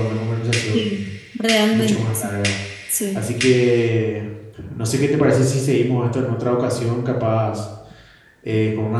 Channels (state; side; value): identical; both; correlation 1.00